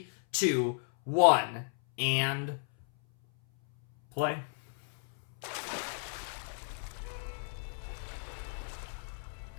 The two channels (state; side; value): silent; right; 56 dB below the other